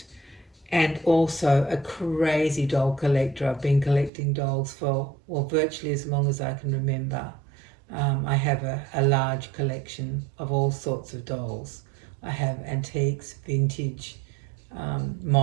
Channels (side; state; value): left; drops out; at 4.1 s